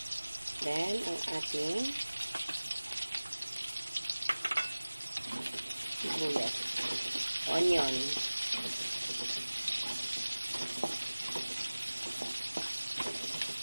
Then, ang ating sibuyas. Onion.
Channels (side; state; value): both; inverted; correlation -1.00